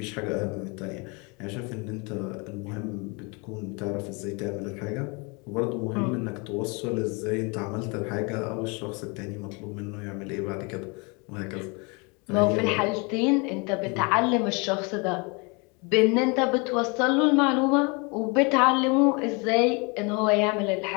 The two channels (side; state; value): right; quieter; 30.5 dB